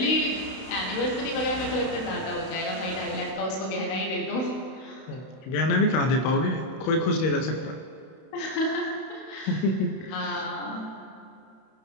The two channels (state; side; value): late; right; 31 ms